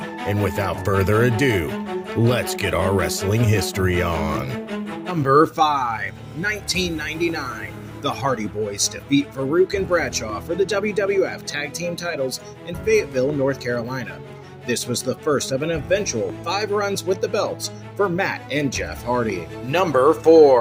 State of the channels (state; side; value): identical; both; correlation 1.00